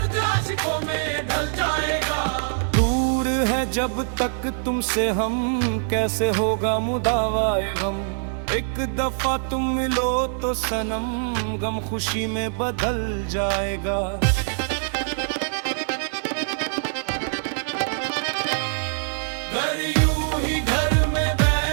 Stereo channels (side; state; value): left; silent; digital silence